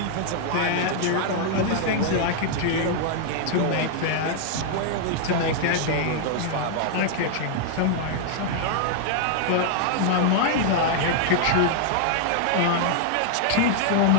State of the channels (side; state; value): both; different; correlation 0.00